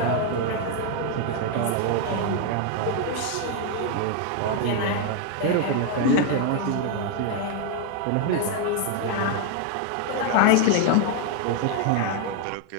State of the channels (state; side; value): different; both; correlation 0.01